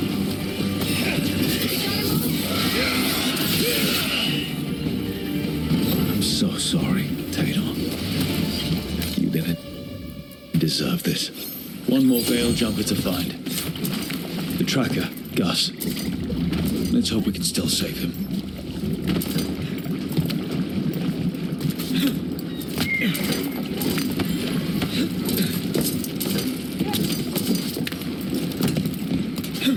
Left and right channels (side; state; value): both; identical; correlation 1.00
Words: I'm so sorry, Tainor. You didn't deserve this. One more veil jumper to find. The tracker, Gus. Let's hope we can still save him.